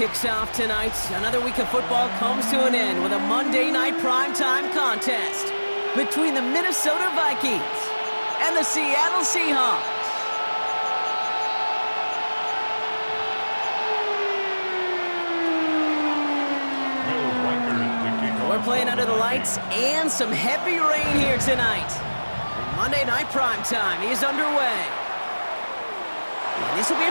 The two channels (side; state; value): both; inverted; correlation -1.00